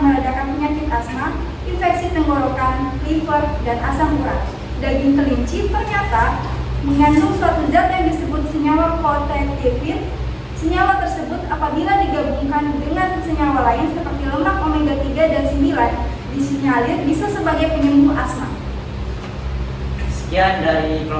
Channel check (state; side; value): identical; both; correlation 1.00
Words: penyakit asma, infeksi infeksi tenggorokan, liver, dan asam urat. Daging kelinci ternyata mengandung suatu zat yang disebut senyawa kooltefin. Senyawa tersebut apabila digabungkan dengan senyawa lain seperti lemak omega 3 dan 9 disinyalir bisa sebagai penyembuh asma. Sekian dari